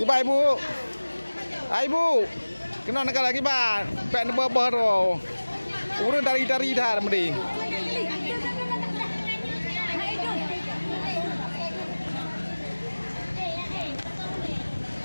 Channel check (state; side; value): inverted; both; correlation -1.00